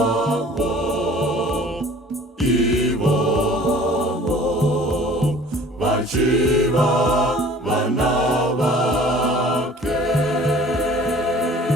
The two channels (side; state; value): both; normal; correlation 0.49